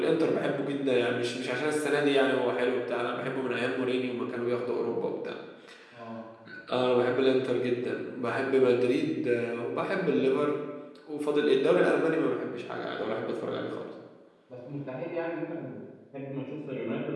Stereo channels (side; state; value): both; identical; correlation 1.00